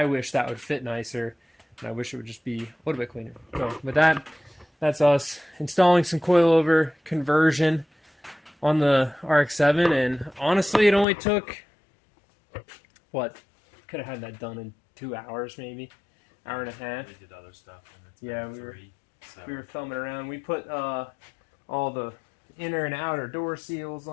wish that would fit nicer, and I wish it would just be a little bit cleaner. So with that, that's us installing some coilover conversion on the RX7, and honestly, it only took, what, could have had that done in 2 hours maybe, hour and a half. We did other stuff. And it's yeah, we were filming around. We put all the inner and outer door seals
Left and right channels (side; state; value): right; drops out; at 11.1 s